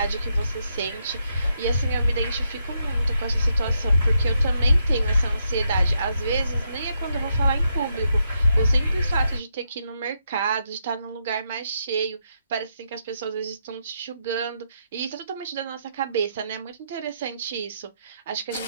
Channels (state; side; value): inverted; both; correlation -0.79